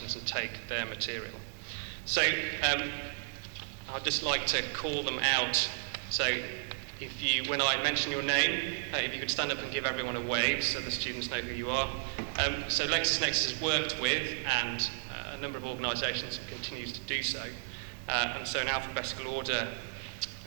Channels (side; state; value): left; quieter; 39.4 dB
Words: and take their material. So I'd just like to call them out. So if you, when I mention your name, if you could stand up and give everyone a wave so the students know who you are. So LexisNexis has worked with and a number of organisations and continues to do so. And so in alphabetical order,